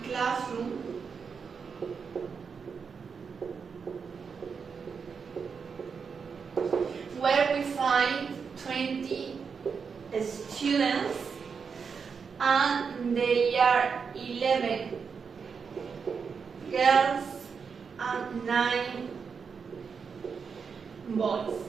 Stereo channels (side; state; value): left; quieter; 5.9 dB